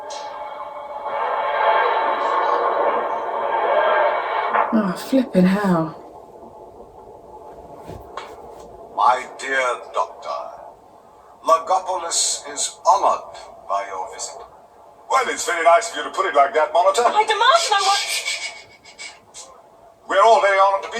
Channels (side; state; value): both; identical; correlation 1.00